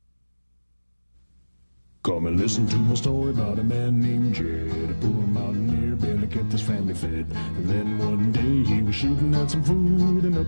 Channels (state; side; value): inverted; both; correlation -1.00